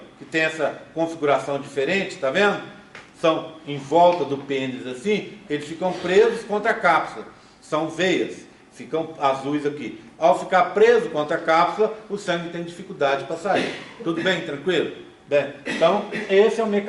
que tem essa configuração diferente, tá vendo? São em volta do pênis assim, eles ficam presos contra a cápsula. São veias, ficam azuis aqui. Ao ficar preso contra a cápsula, o sangue tem dificuldade para sair. Tudo bem? Tranquilo? Bem, então, esse é o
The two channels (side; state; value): both; identical; correlation 1.00